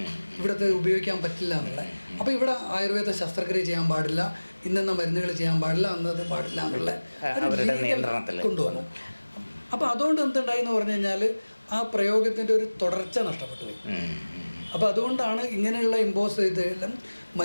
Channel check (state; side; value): inverted; both; correlation -1.00